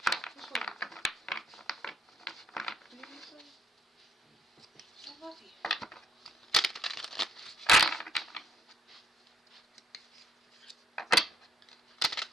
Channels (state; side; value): normal; both; correlation 0.70